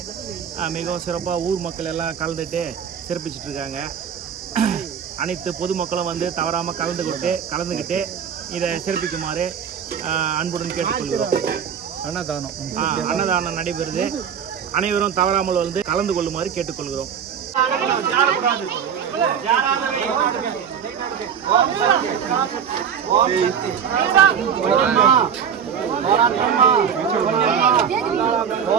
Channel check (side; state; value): left; quieter; 7.8 dB